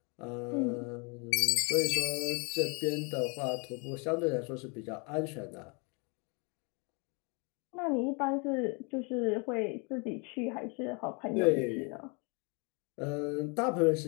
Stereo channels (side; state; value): right; quieter; 33.1 dB